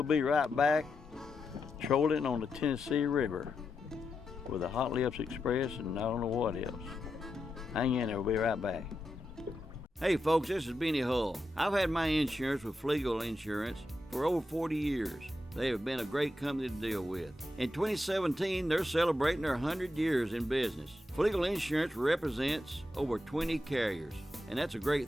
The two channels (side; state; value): both; normal; correlation 0.87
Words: be right back trolling on the Tennessee River with the Hot Lips Express and I don't know what else. Hang in there, we'll be right back. Hey folks, this is Benny Hull. I've had my insurance with Flegel Insurance for over 40 years. They have been a great company to deal with. In 2017, they're celebrating their 100 years in business. Flegel Insurance represents over 20 carriers, and that's a great